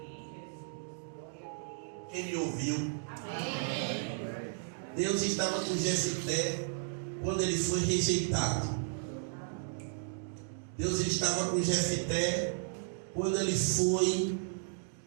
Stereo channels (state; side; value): silent; left; digital silence